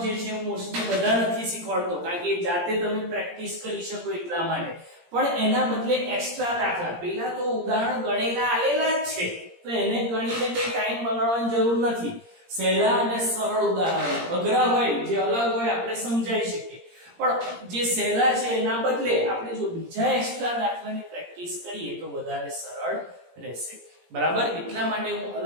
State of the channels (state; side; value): late; left; 17 ms